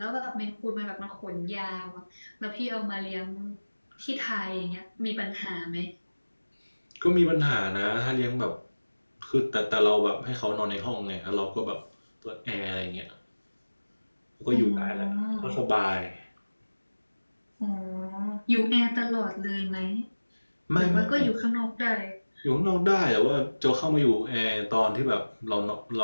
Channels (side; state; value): both; inverted; correlation -1.00